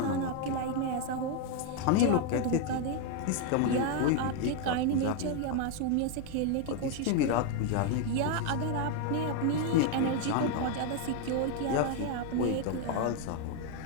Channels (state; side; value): different; both; correlation 0.01